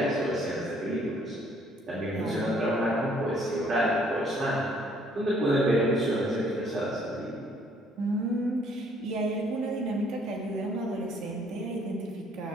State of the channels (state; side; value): normal; both; correlation 0.63